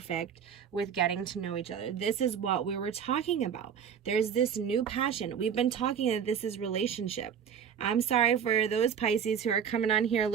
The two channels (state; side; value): quieter; left; 7.8 dB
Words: with getting to know each other. This is what we were talking about. There's this new passion. We've been talking that this is relationship. I'm sorry for those Pisces who are coming on here